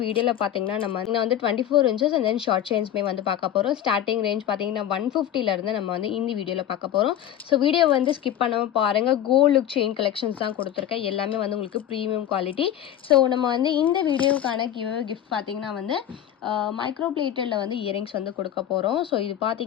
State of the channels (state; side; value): quieter; right; 10.9 dB